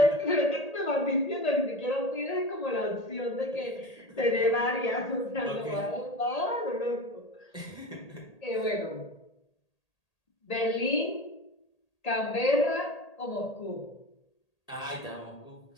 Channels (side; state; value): right; late; 1.8 ms